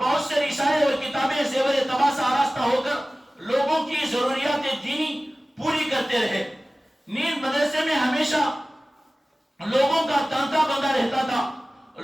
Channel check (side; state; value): both; normal; correlation 0.97